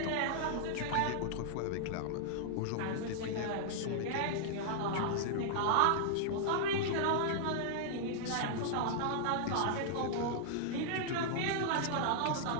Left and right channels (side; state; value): both; different; correlation -0.01